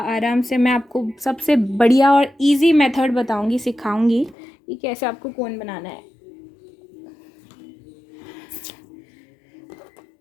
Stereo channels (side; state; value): right; drops out; at 4.4 s